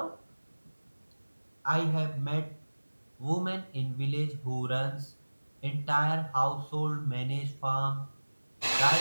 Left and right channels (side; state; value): both; inverted; correlation -1.00